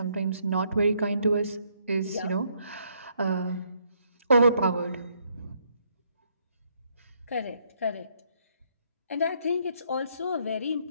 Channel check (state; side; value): inverted; both; correlation -0.71